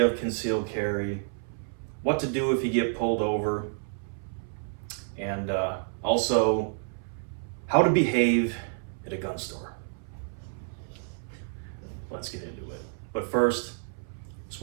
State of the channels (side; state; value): left; silent; 58 dB below the other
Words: concealed carry, what to do if you get pulled over, and also how to behave at a gun store. Let's get into it. But first, just